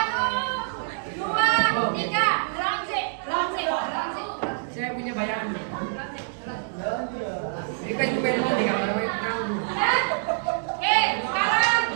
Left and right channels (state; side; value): silent; left; digital silence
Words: 2, 3, langsing. Saya punya bayangan. Ini kan juga yang mau di gambar kamu. Oke, sekarang